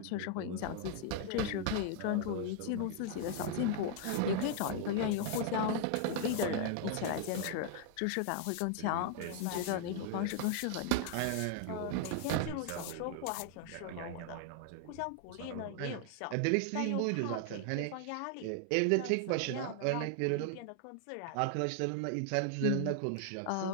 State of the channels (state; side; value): different; both; correlation 0.00